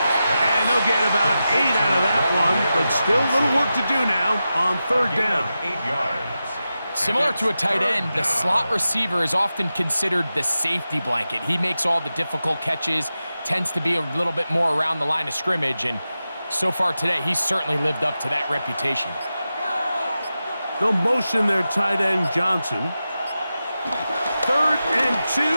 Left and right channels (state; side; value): inverted; both; correlation -0.92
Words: And they'll get about 8 out of that one, but still a little work to do now on 3rd down. 8 yards. Similar to a tight end, the slot receiver is often considered the safety blanket. He makes all the difficult catches, tends to be a little bit more around the line of scrimmage, and so far today, he's certainly lived up to that reputation. They'll motion their tight end, Johnson. 3rd and 2,